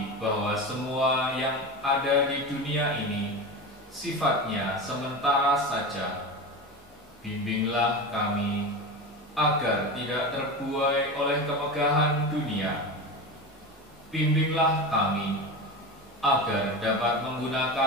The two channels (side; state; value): both; normal; correlation 0.25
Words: bahwa semua yang ada di dunia ini sifatnya sementara saja. Bimbinglah kami agar tidak terbuai oleh kemegahan dunia. Bimbinglah kami agar dapat